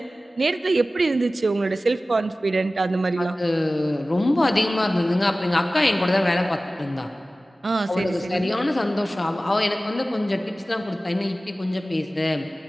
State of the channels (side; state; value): both; normal; correlation 0.96